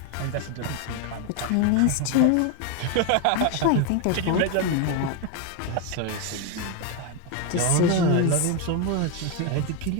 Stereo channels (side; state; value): both; different; correlation 0.01